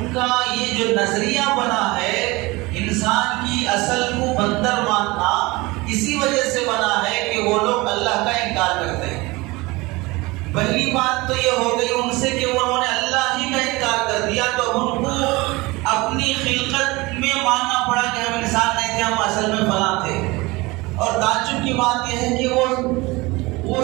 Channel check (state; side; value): quieter; left; 22.8 dB